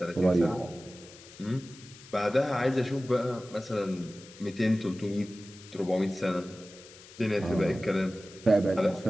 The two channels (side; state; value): left; noise; hiss, 20 dB below the sound